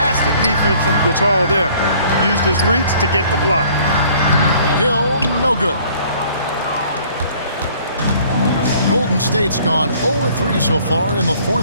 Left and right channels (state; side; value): inverted; both; correlation -0.56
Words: defense from Gasol there. Used his reach to get the block. Hill, no good. Golden State's gone 0-3 so far in the